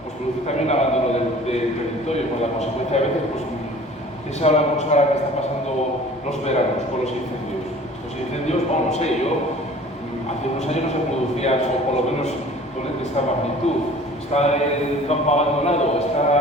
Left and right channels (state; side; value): normal; both; correlation 0.47